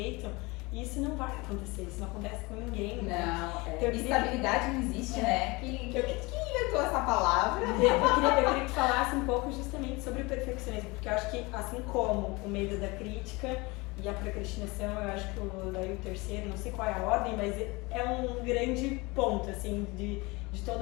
E isso não vai acontecer, isso não acontece com ninguém. Não, então, estabilidade não existe, né? Quem inventou essa palavra? Eu queria que falasse um pouco justamente sobre o perfeccionismo, porque eu acho que assim como o medo da crítica e a procrastinação, eu acho que daí o terceiro, não sei qual é a ordem, mas é um grande ponto, assim, de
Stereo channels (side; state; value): right; quieter; 24.8 dB